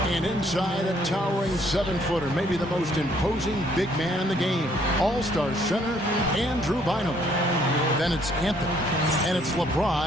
And inside, a towering 7-footer, maybe the most imposing big man in the game. All-Star center, Andrew Bynum. Then it's Anthony, and it's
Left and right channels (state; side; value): normal; both; correlation 0.65